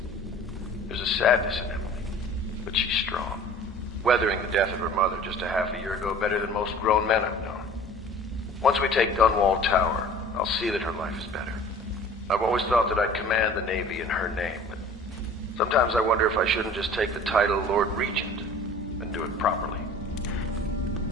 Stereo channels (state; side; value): normal; both; correlation 0.46